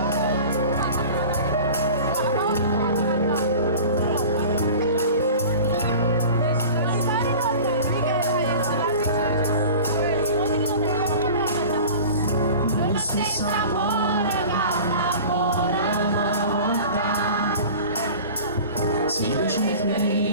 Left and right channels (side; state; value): both; inverted; correlation -0.39